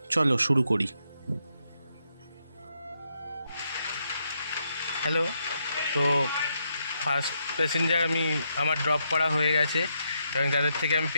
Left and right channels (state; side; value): inverted; both; correlation -0.79